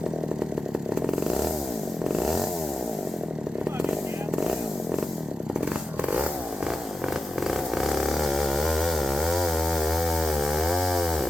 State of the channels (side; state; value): both; normal; correlation 0.89